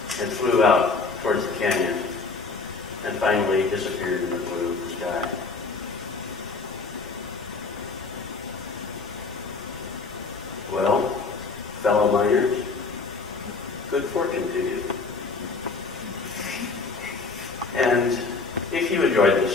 and flew out towards the canyon and finally disappeared in the blue of the sky. Well, fellow miners, good fortune to you. And if you enjoyed this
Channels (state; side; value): quieter; right; 4.2 dB